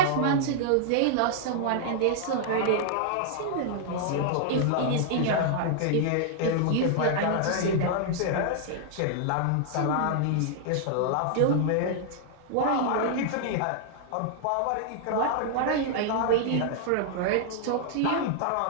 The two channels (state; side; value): different; both; correlation -0.01